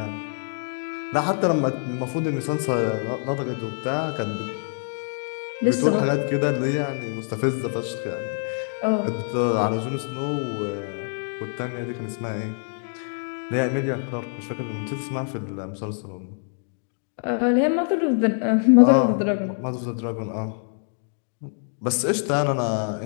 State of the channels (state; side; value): silent; right; digital silence